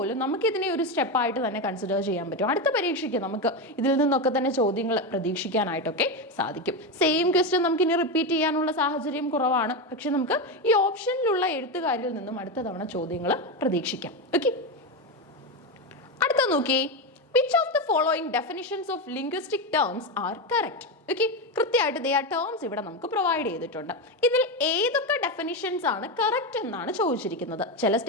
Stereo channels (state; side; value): normal; both; correlation 0.14